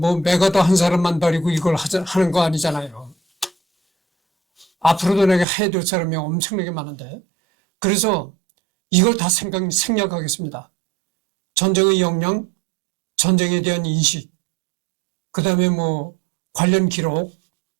한 사람만 버리고 이걸 하는 거 아니잖아요. 앞으로도 내가 해야 될 사람이 엄청나게 많은데. 그래서 이걸 다 생략하겠습니다. 전쟁의 역량, 전쟁에 대한 인식, 그 다음에 관련 기록,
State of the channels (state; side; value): drops out; left; at 5.5 s